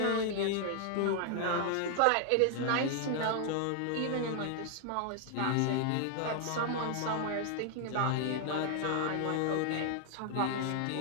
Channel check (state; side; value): different; both; correlation 0.00